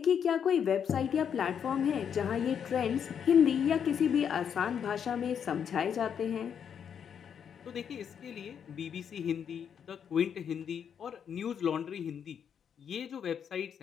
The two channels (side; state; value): right; quieter; 7.9 dB